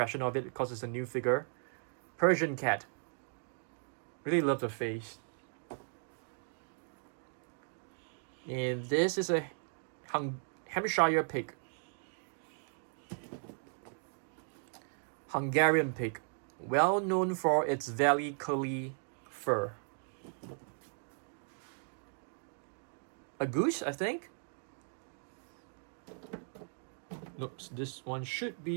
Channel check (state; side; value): silent; left; 53 dB below the other